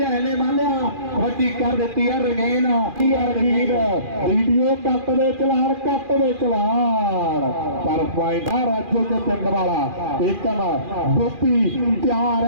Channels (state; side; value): late; left; 2.4 ms